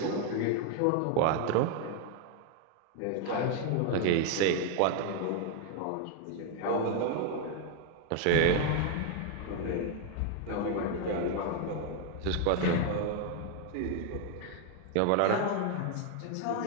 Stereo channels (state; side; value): different; both; correlation 0.01